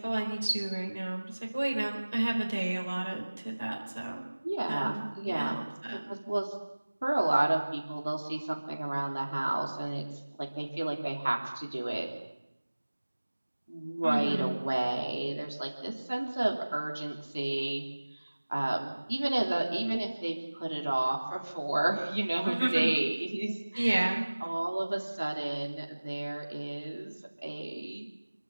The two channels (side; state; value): both; inverted; correlation -1.00